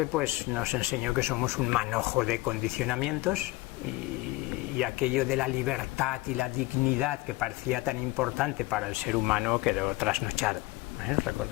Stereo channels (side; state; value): right; quieter; 20.5 dB